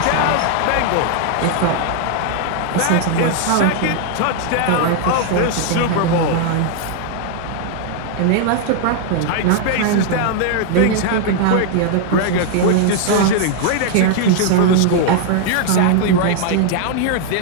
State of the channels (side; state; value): both; different; correlation 0.00